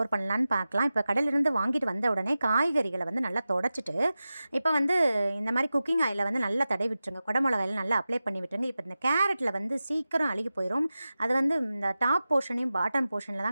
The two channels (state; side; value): inverted; both; correlation -0.94